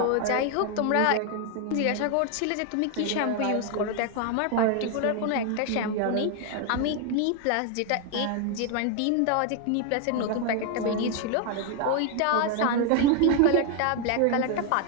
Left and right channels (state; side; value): different; both; correlation 0.01